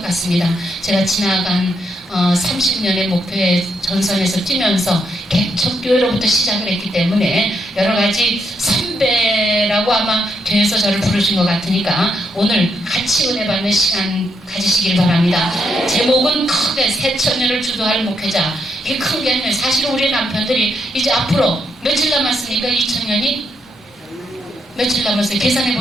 같습니다. 제가 지나간 30년의 목표의 전선에서 뛰면서 개척교회로부터 시작을 했기 때문에 여러 가지 선배라고 아마 교회에서 저를 부르신 것 같으니까 오늘 같이 은혜 받는 시간 가지시길 바랍니다. 제목은 크게 새천년을 주도할 목회자. 이게 큰 게 아니에요. 사실 우리 남편들이 이제 앞으로 며칠 남았습니까? 2000년이? 며칠 남았어요? 계산해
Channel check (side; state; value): both; normal; correlation 0.79